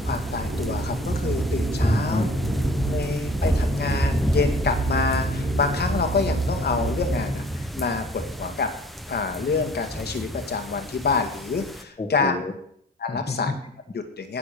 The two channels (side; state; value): both; normal; correlation 0.47